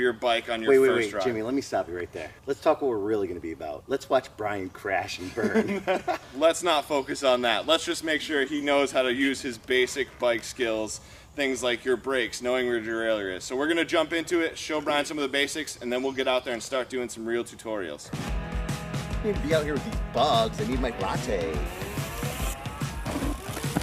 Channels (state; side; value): identical; both; correlation 1.00